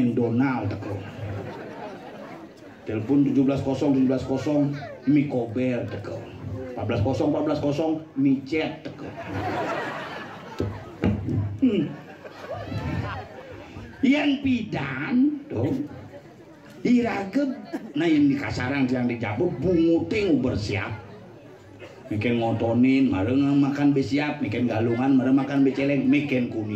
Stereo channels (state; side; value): identical; both; correlation 1.00